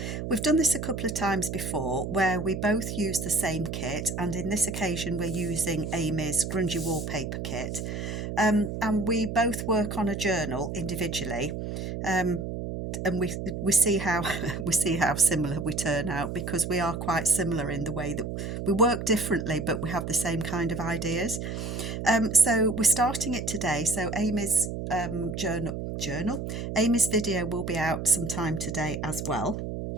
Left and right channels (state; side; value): noise; right; hum, 5 dB below the sound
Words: We've done this a couple of times before where we both use the same kit, and in this occasion we're using Amy's Grungy Wallpaper kit. And we both work on a journal individually. And we see how we see how similar we turn out, because we are quite similar in the way that we work differently, but we have the same kind of ideas. So we're starting it today. So Amy's journal, Amy's video will be out sometime today as well.